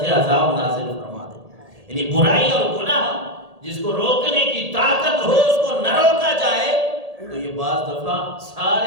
عذاب نازل فرما دے۔ یعنی برائی اور گناہ جس کو روکنے کی طاقت ہو اس کو نہ روکا جائے تو یہ بعض دفعہ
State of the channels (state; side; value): late; left; 1.8 ms